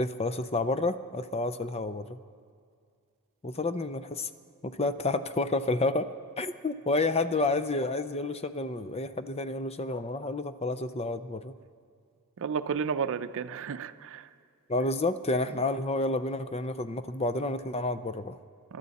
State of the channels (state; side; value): normal; both; correlation 0.24